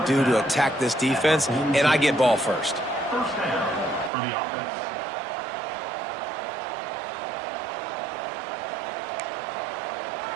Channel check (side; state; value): left; drops out; at 4.1 s